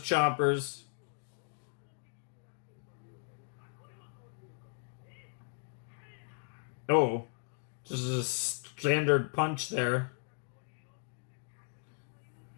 Oh. Just a standard punch there.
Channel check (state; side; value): silent; right; 54 dB below the other